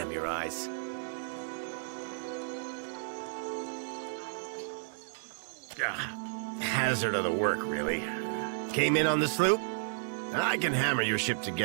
your eyes. Hazard of the work, really. Came in on the sloop? I can hammer your ship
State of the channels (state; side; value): silent; left; 56 dB below the other